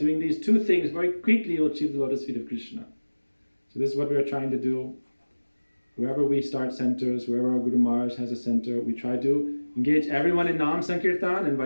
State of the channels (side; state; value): both; inverted; correlation -1.00